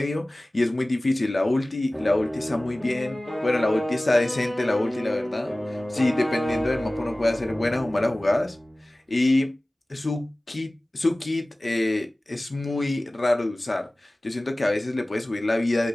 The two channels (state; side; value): normal; both; correlation 0.98